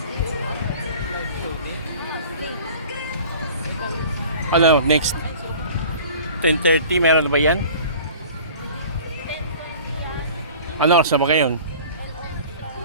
Ano, next 10:30, meron na ba yan? Ano oras na ba ngayon?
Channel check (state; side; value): inverted; both; correlation -0.44